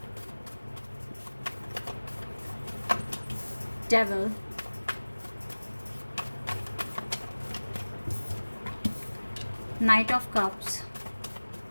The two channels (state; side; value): inverted; both; correlation -1.00